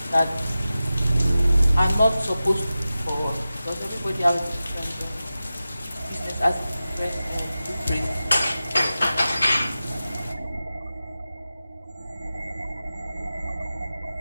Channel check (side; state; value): both; inverted; correlation -0.94